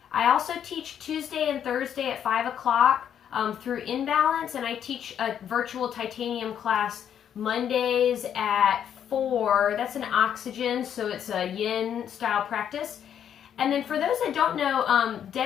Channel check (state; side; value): quieter; right; 9.2 dB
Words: I also teach Tuesday and Thursday at 5 o'clock through Imbalance, and I teach a virtual titanium class Mondays at 4. That's an oxygen, so it's a yin style practice. And then for those that don't know,